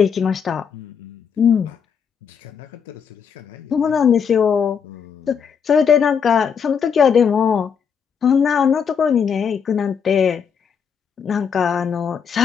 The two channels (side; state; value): right; quieter; 6.9 dB